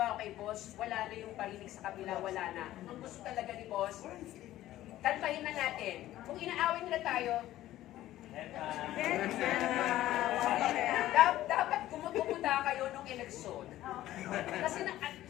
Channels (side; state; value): right; quieter; 14.5 dB